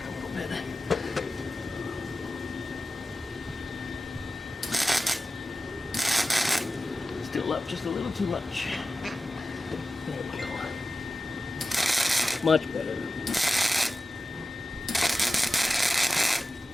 a little bit. Still up just a little too much. There we go. Much better.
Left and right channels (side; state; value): both; normal; correlation 0.94